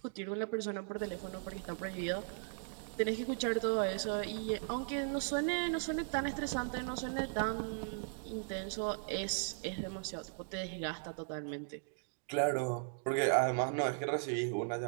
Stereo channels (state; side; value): silent; left; digital silence